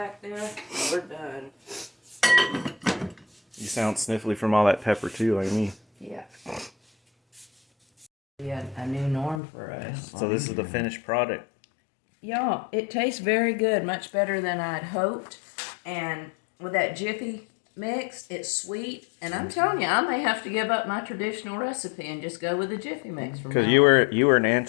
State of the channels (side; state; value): right; drops out; at 9.4 s